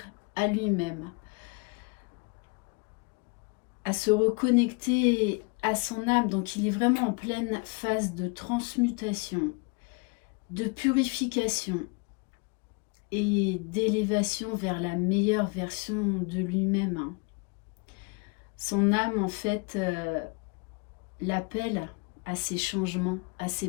à lui-même, à se reconnecter à son âme. Donc il est vraiment en pleine phase de transmutation, de purification et d'élévation vers la meilleure version de lui-même. Son âme, en fait, l'appelle à ces changements, à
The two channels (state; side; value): quieter; right; 32.0 dB